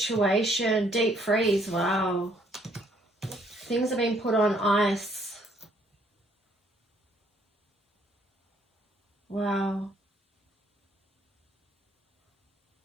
Deep freeze. Wow. Things have been put on ice. Wow.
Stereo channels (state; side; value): normal; both; correlation 0.66